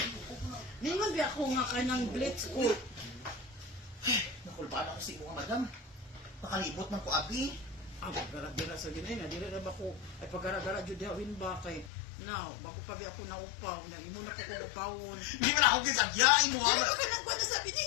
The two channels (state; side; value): drops out; right; at 11.9 s